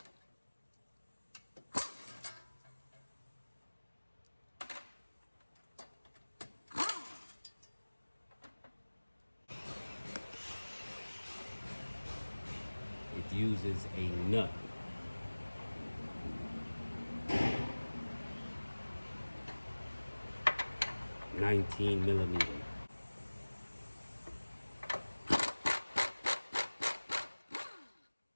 It uses a nut. $19 millimeter.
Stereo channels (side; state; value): both; inverted; correlation -1.00